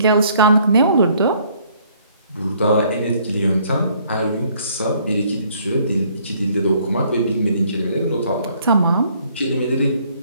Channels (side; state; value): both; inverted; correlation -0.63